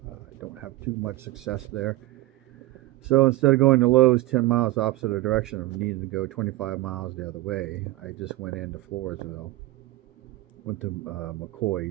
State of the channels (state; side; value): quieter; left; 18.2 dB